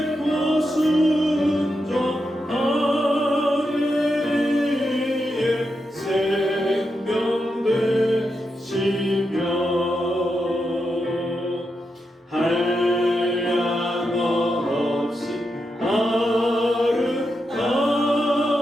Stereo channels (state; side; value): normal; both; correlation 0.86